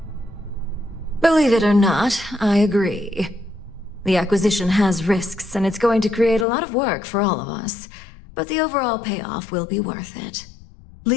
Believe it or not, I agree. The acquisition has risks, and it's going to create a lot of work for all of us. But the overall payoff will be worth it.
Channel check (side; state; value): right; drops out; at 6.5 s